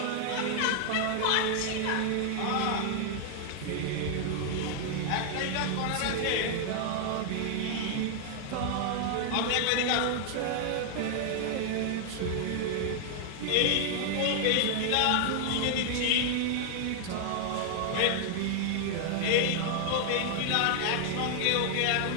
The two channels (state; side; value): different; both; correlation 0.00